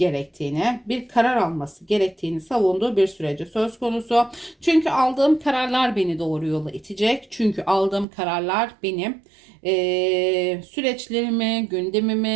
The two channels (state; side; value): drops out; left; at 8.1 s